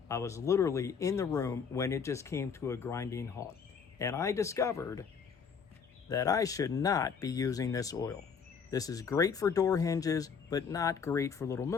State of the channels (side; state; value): right; quieter; 6.3 dB